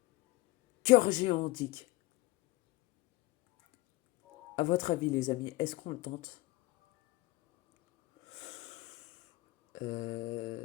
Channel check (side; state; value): right; quieter; 19.2 dB